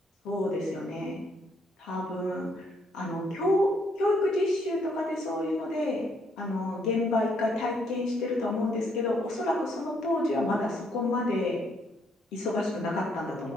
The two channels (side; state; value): both; normal; correlation 0.71